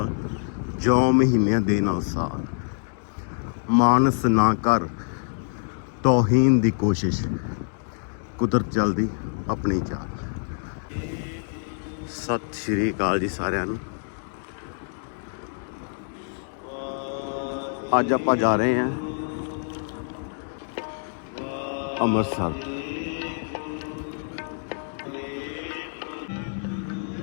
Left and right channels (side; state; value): right; silent; 61 dB below the other